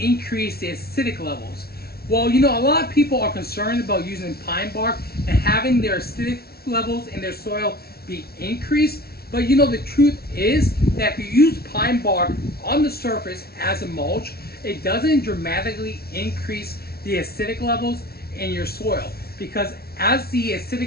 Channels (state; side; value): late; right; 0.45 ms